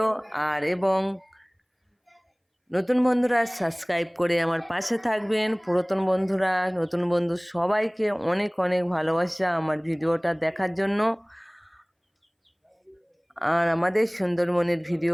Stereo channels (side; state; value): both; identical; correlation 1.00